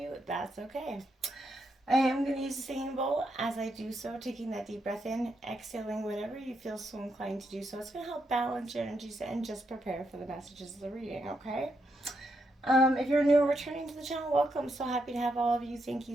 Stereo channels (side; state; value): both; normal; correlation 0.80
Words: that's okay. I am going to use the singing bowl as I do so, taking that deep breath in, exhaling whenever you feel so inclined to do so. It's going to help balance your energies and just prepare for the messages of the reading, okay? If you're new or returning to the channel, welcome. So happy to have all of you. Thank you